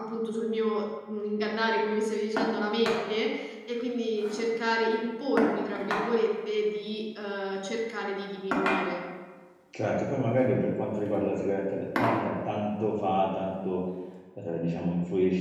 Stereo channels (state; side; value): identical; both; correlation 1.00